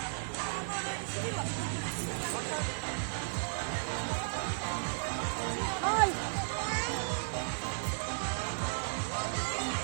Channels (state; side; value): silent; left; 55 dB below the other